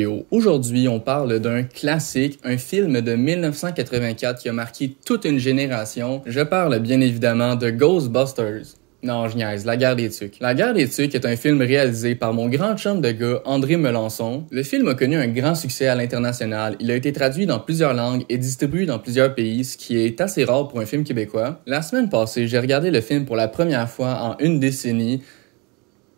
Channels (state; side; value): quieter; left; 28.8 dB